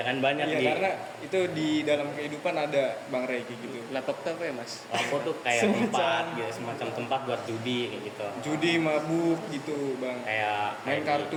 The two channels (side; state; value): both; identical; correlation 1.00